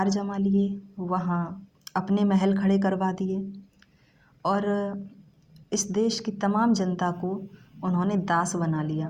जमा लिए, वहाँ अपने महल खड़े करवा दिए और इस देश की तमाम जनता को उन्होंने दास बना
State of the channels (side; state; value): both; identical; correlation 1.00